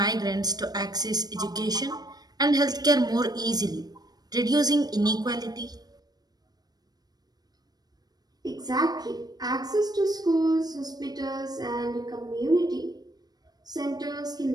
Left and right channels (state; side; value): late; left; 0.19 ms